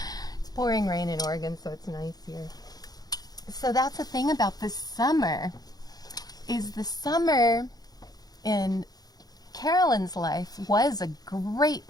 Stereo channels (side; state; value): right; late; 0.19 ms